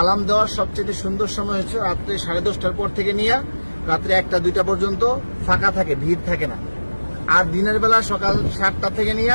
দেওয়ার সবচেয়ে সুন্দর সময় হচ্ছে রাত্রে 10:30টার পর থেকে নিয়ে রাত্রে 1টা-2টা পর্যন্ত ফাঁকা থাকে, ভিড় থাকে না। আর দিনের বেলা সকাল 7টা থেকে নিয়ে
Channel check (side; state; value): both; inverted; correlation -1.00